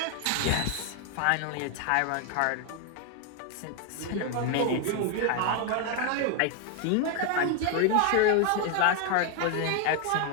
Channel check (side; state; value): both; different; correlation 0.01